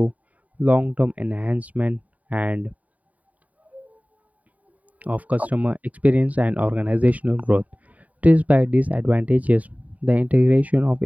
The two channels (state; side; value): late; left; 0.071 ms